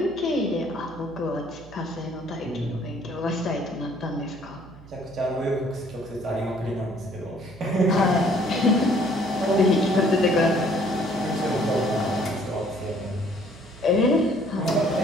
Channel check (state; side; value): noise; right; hum, 20 dB below the sound